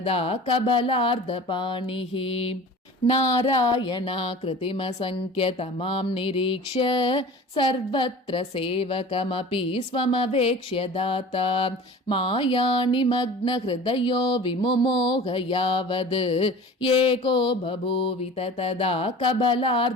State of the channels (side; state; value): both; normal; correlation 0.40